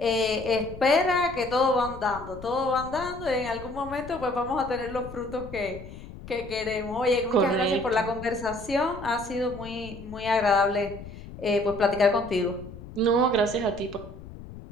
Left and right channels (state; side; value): noise; left; rumble, 14 dB below the sound